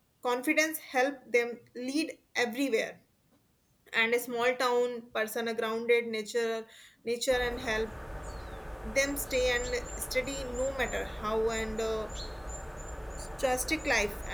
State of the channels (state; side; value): identical; both; correlation 1.00